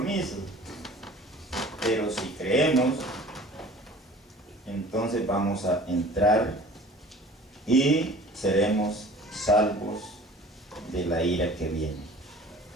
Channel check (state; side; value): normal; both; correlation 0.45